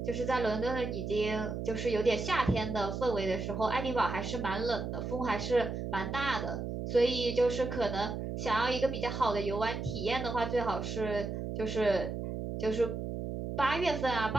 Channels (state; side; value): noise; right; hum, 4 dB below the sound